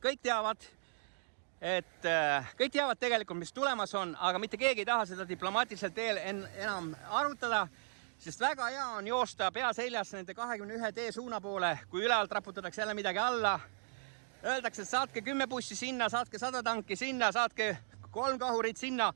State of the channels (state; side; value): silent; left; digital silence